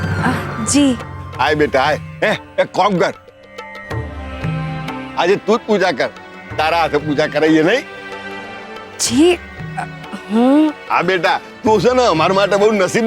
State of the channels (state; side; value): identical; both; correlation 1.00